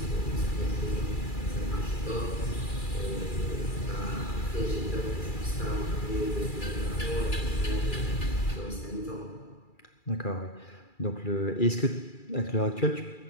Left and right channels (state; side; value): late; right; 2.3 ms